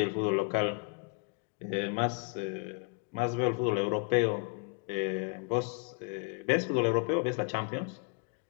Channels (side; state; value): right; quieter; 32.3 dB